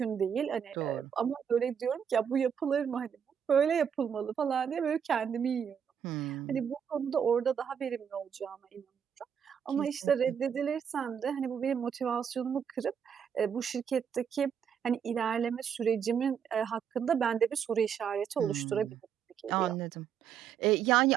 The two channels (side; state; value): left; quieter; 7.9 dB